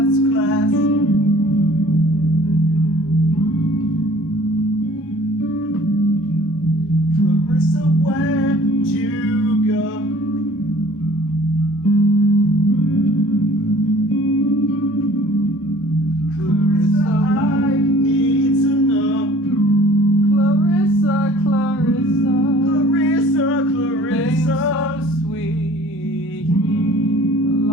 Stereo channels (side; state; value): both; normal; correlation 0.51